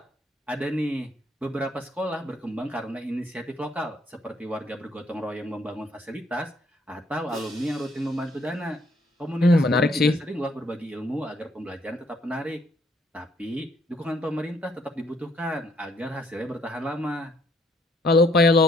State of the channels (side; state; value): both; normal; correlation 0.67